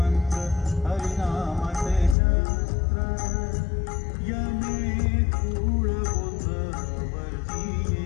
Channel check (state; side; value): drops out; right; at 2.1 s